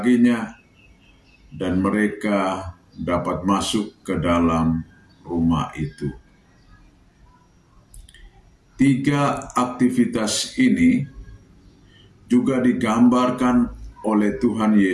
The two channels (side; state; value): both; identical; correlation 1.00